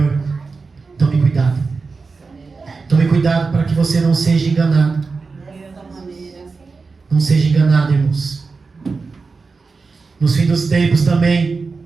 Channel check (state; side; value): quieter; left; 4.4 dB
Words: tome cuidado. Tome cuidado para que você não seja enganado. Não seja enganado, irmãos. Nos fins dos tempos também,